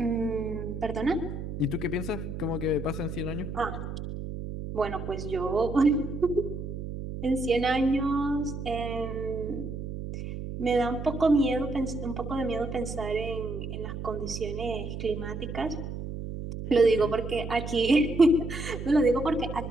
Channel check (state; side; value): noise; right; hum, 7 dB below the sound